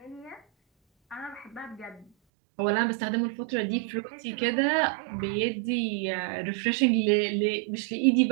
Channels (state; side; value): drops out; left; at 2.1 s